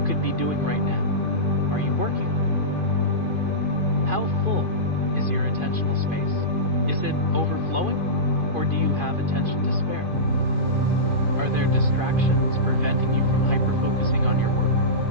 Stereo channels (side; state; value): left; late; 2.5 ms